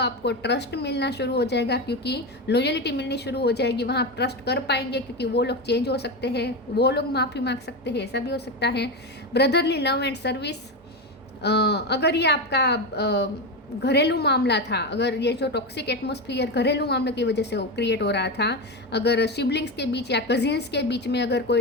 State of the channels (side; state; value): both; normal; correlation 0.16